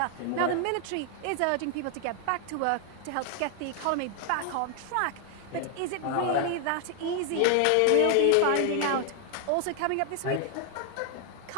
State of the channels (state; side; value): different; both; correlation 0.00